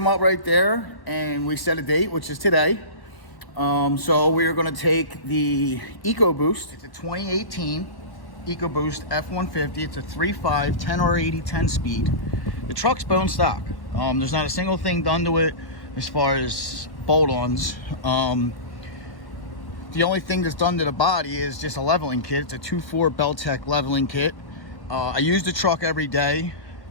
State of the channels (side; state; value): right; late; 1.1 ms